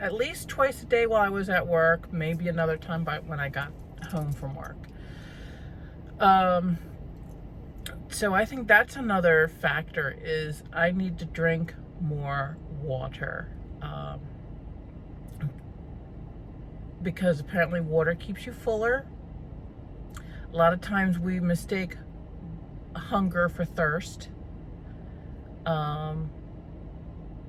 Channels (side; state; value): both; identical; correlation 1.00